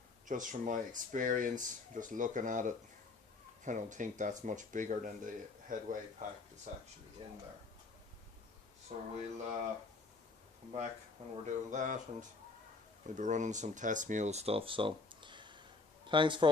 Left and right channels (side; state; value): right; quieter; 3.7 dB